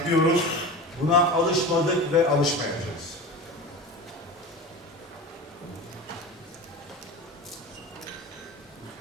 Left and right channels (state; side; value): normal; both; correlation 0.30